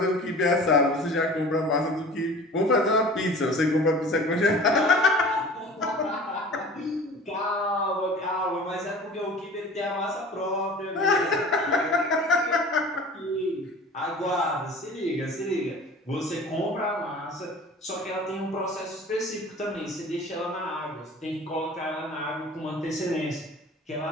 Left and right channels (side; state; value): both; normal; correlation 0.42